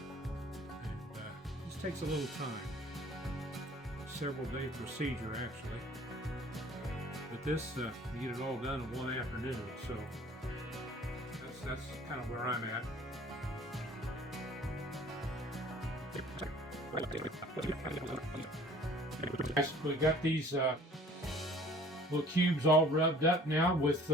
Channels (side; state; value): both; normal; correlation 0.52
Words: this takes a little time. Several day procedure actually. But this, you get it all done in one afternoon, so that's kind of where I'm at. We got these little cubes all rubbed up now with